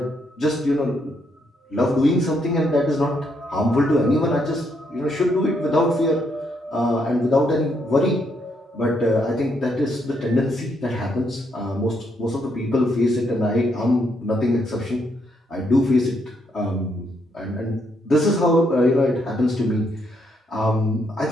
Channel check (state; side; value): normal; both; correlation 0.75